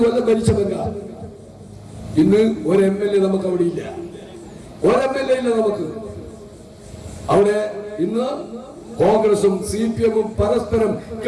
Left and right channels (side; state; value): both; identical; correlation 1.00